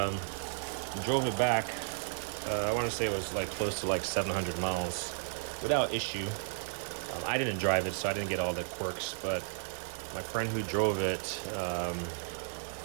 Drove it back. I want to say it was like close to like 700 miles without issue. I didn't drive it, so I didn't get all the quirks, but my friend who drove it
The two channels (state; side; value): silent; left; digital silence